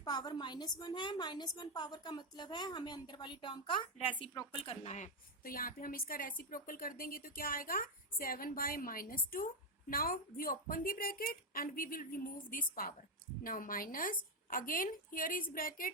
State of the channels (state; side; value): normal; both; correlation 0.04